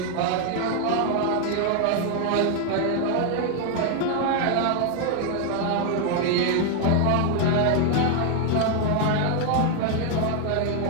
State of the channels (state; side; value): different; both; correlation 0.00